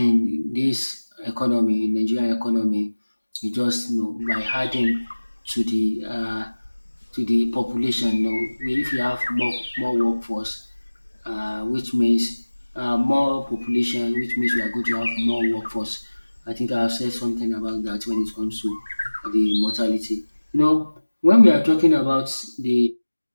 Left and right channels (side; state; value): both; inverted; correlation -1.00